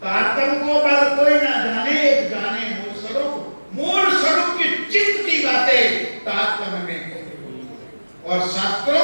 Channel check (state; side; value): inverted; both; correlation -1.00